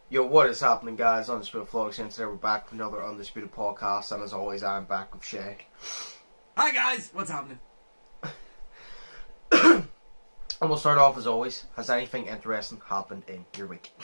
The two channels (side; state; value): both; inverted; correlation -1.00